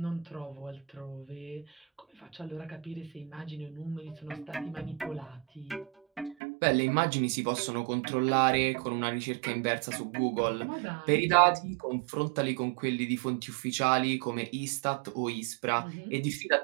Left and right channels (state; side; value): drops out; left; at 6.4 s